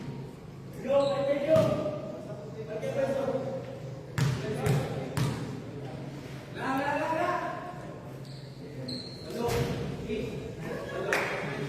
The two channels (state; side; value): identical; both; correlation 1.00